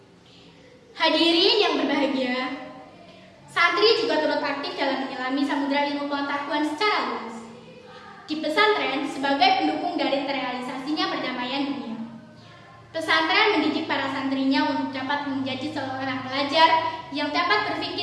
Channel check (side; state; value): both; identical; correlation 1.00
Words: Hadirin yang berbahagia, santri juga turut aktif dalam menyelami samudera ilmu pengetahuan secara luas. Di pesantren sebagai pendukung dari terrealisasinya perdamaian dunia. Pesantren mendidik para santrinya untuk dapat menjadi seorang pelajar yang dapat